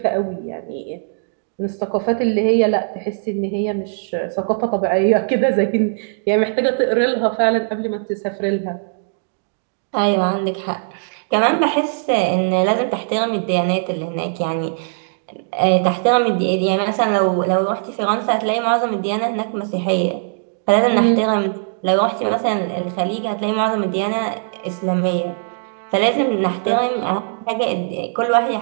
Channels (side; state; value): left; silent; digital silence